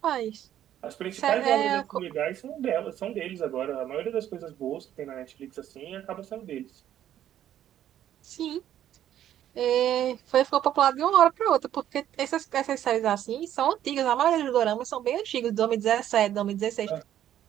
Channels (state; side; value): quieter; left; 11.3 dB